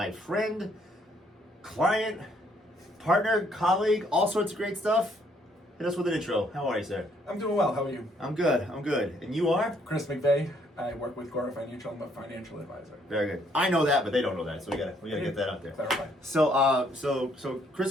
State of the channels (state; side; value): normal; both; correlation 0.67